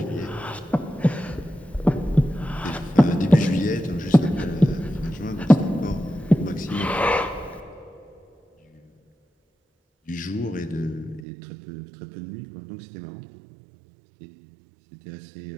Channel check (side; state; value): left; drops out; at 11.2 s